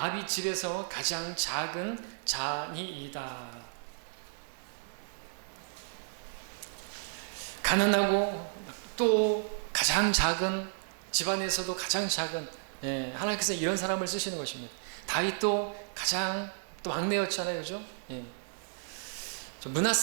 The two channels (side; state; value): left; silent; 56 dB below the other